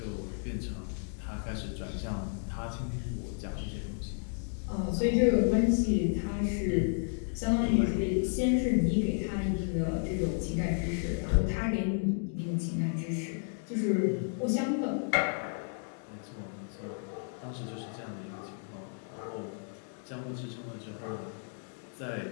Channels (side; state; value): right; silent; 56 dB below the other